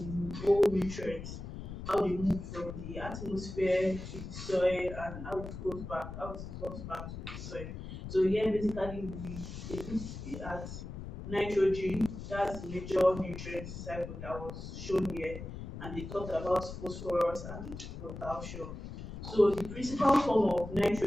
whole nutrients, how they move from the atmosphere to the soil and how it goes back, how it goes back to the soil. So here basically they look at nitrogen, that's the major nutrient cycle that was shown here, and they talked about phosphorus and potassium. So the principal form of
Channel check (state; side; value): noise; left; rumble, 9 dB below the sound